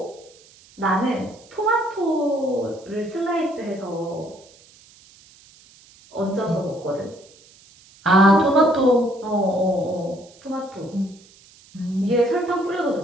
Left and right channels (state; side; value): noise; right; hiss, 26 dB below the sound